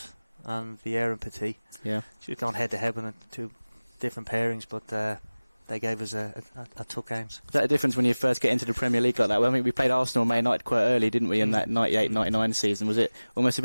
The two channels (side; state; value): both; inverted; correlation -1.00